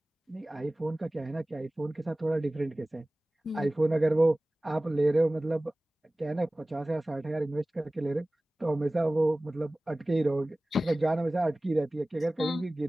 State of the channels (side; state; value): both; normal; correlation 0.98